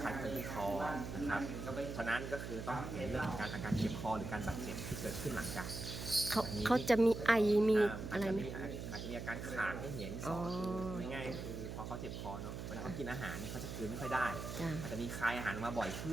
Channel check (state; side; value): noise; right; hum, 6 dB below the sound